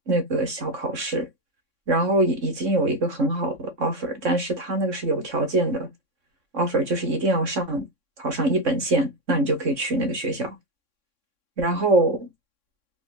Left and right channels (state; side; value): late; left; 3.6 ms